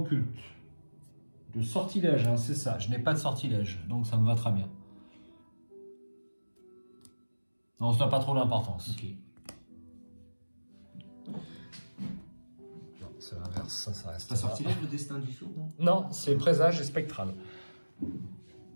De sortilège, hein, c'est ça. Je n'ai pas de sortilège, donc ça me va très bien. Non, ça n'a pas trop d'importance. Ok. Non, c'est l'inverse, ça reste. Pas sortilège, le destin du sourd, non? Non, c'est présage et spectral.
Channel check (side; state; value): both; inverted; correlation -1.00